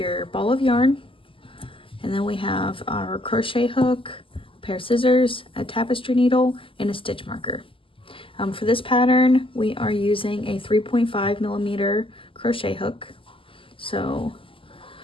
ball of yarn, and then we have our crochet hook, a pair of scissors, a tapestry needle, and a stitch marker. For this pattern, we are using a 3.5 millimeter crochet hook. So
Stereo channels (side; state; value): right; late; 0.25 ms